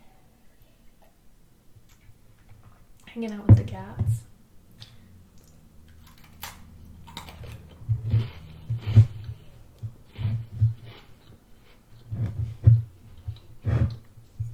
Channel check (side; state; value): both; identical; correlation 1.00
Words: hanging out with the cats.